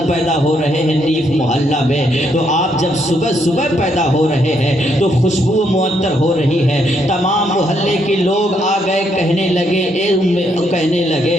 پیدا ہو رہے ہیں نیف محلہ میں، تو آپ جب صبح صبح پیدا ہو رہے ہیں تو خوشبو معطر ہو رہی ہے، تمام محلے کے لوگ آ گئے، کہنے لگے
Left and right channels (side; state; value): both; normal; correlation 0.74